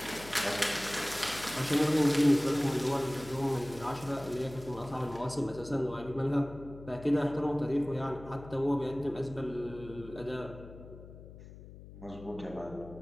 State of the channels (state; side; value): noise; left; hum, 16 dB below the sound